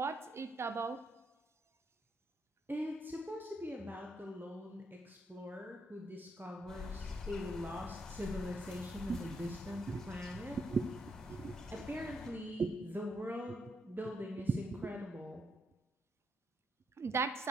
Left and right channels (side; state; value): both; normal; correlation 0.77